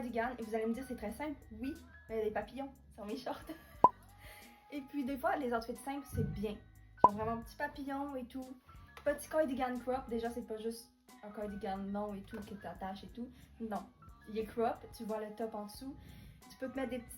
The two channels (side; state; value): both; identical; correlation 1.00